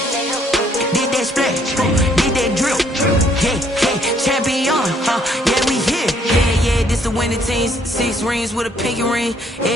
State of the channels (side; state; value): both; normal; correlation 0.66